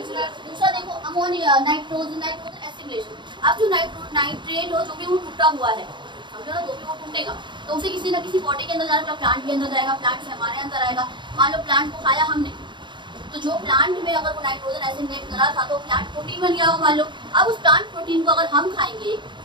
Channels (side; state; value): left; late; 0.23 ms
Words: दूसरा देखो अमोनिया, नाइट्रोजन एसिमिलेशन। अब जो नाइट्रेट हो जो भी वो टूटा हुआ है, समझो ना, जो भी वो टूटेगा तो उसे किसी ना किसी पॉटी के अंदर जाएगा, प्लांट के अंदर जाएगा, प्लांट से हमारे अंदर आएगा। मान लो प्लांट को खाया हमने, तो जो प्लांट में अगर वो नाइट्रोजन एसिमिलेट करा था तो प्लांट प्रोटीन बन गया हो मान लो। अब उस प्लांट प्रोटीन को अगर हम खाएंगे,